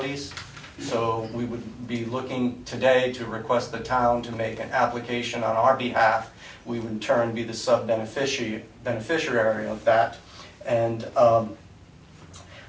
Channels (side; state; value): both; identical; correlation 1.00